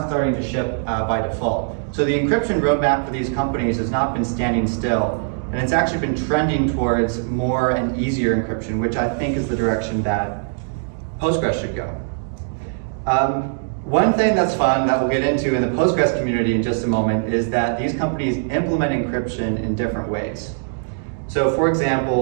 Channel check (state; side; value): silent; left; digital silence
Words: starting to ship by default. So the encryption roadmap for these companies has not been standing still. and it's actually been trending towards more and easier encryption, which I think is the direction that Postgres should go. One thing that's fun that we'll get into in the Postgres community in just a moment is that these companies implement encryption in different ways. So for